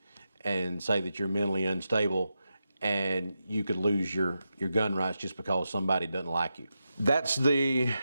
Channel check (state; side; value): inverted; both; correlation -0.88